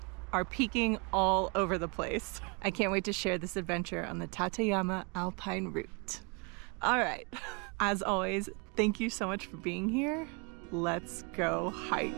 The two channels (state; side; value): quieter; left; 32.2 dB